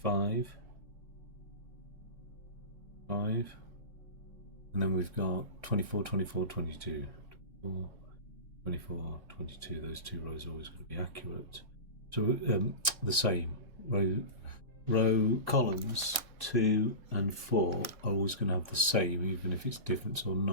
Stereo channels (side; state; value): left; late; 1.6 ms